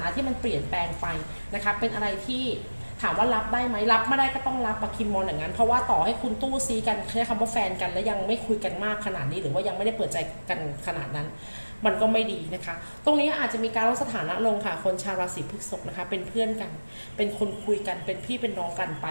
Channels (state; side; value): inverted; both; correlation -1.00